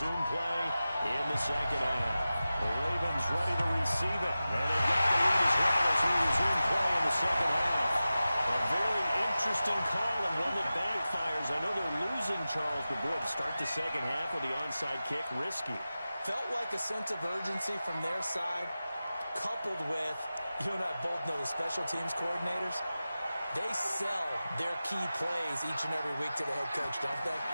play in the second half. The Ravens ready to receive it, and they've got the lead as well as we resume play in the second half. A very interesting call and one that backfires. I know they're losing, Charles, but boy, to start the second half with the onside kick, risky. Felt like a sense of urgency from their side, coupled with, you and I both know the special teams coordinators. They sell their key plays each and every week to the head coach, don't they?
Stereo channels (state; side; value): inverted; both; correlation -0.95